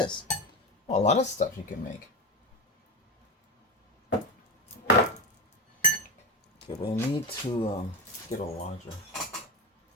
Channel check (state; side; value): normal; both; correlation 0.19